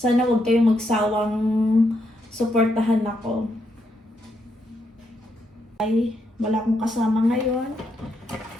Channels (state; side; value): normal; both; correlation 0.79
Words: huwag kayong magsawang suportahan ako. Ay, wala akong kasama ngayon.